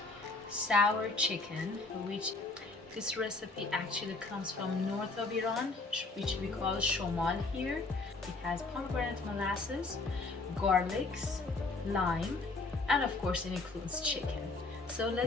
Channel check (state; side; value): quieter; right; 3.5 dB